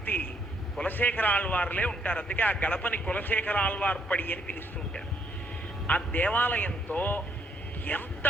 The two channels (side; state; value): both; normal; correlation 0.71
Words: కులశేఖర ఆళ్వార్లే ఉంటారు. అందుకే ఆ గడపని కులశేఖర ఆళ్వార్పడి అని పిలుస్తూ ఉంటారు. ఆ దేవాలయంతో